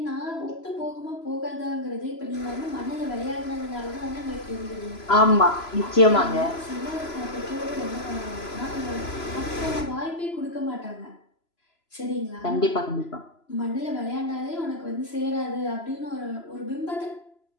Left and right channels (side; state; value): right; late; 3.0 ms